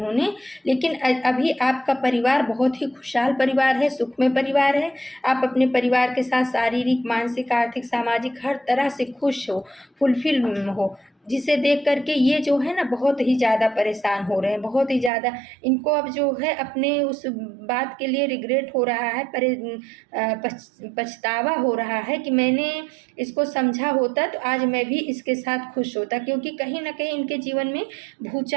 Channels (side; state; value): left; drops out; at 15.1 s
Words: लेकिन अभी आपका परिवार बहुत ही खुशहाल परिवार है, सुखमय परिवार है। आप अपने परिवार के साथ शारीरिक, मानसिक, आर्थिक, सामाजिक हर तरह से खुश हो, फुलफिल हो, जिसे देख करके ये जो है ना बहुत ही ज़्यादा परेशान हो रहे हैं, बहुत ही ज़्यादा। इनको अब जो है अपने उस बात के लिए रिग्रेट हो रहा है, पछतावा हो रहा है कि मैंने इसको समझा होता तो आज मैं भी इसके साथ खुश होता। क्योंकि कहीं ना कहीं इनके जीवन में